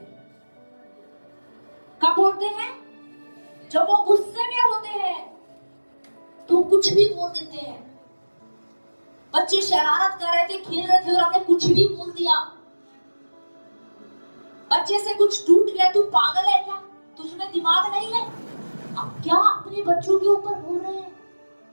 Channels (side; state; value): both; inverted; correlation -1.00